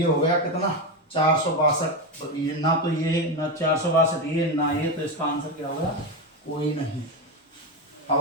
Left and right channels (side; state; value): both; normal; correlation 0.13